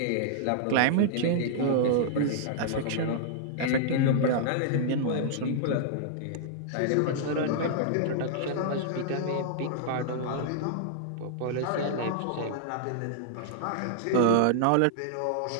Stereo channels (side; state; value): both; different; correlation -0.01